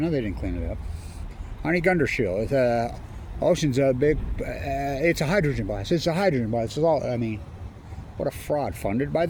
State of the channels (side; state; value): both; identical; correlation 1.00